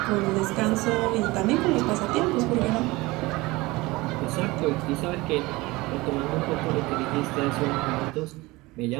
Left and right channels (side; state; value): left; quieter; 21.5 dB